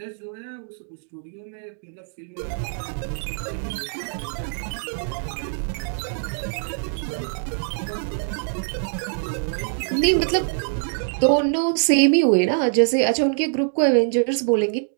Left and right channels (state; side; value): silent; left; digital silence